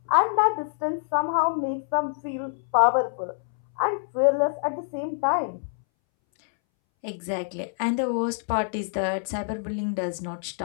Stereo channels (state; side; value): silent; right; 61 dB below the other